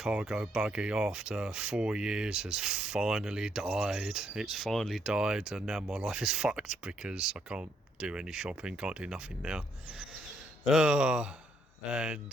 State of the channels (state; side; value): normal; both; correlation 0.73